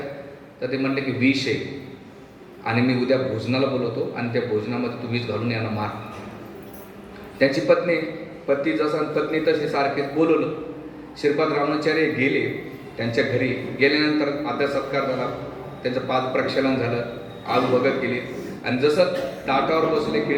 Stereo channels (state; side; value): identical; both; correlation 1.00